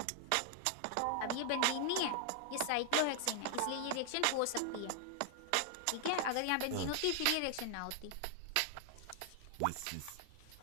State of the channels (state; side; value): different; both; correlation 0.00